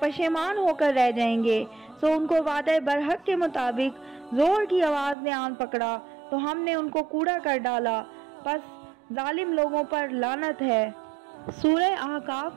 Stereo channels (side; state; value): left; drops out; at 5.2 s